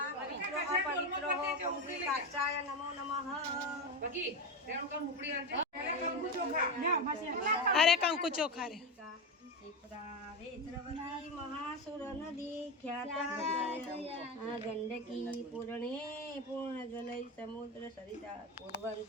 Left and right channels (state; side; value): normal; both; correlation 0.16